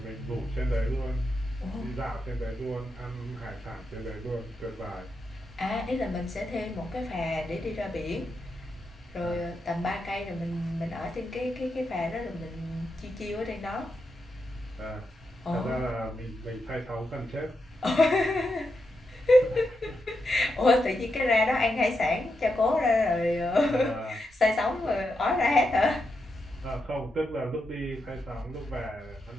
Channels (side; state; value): both; normal; correlation 0.85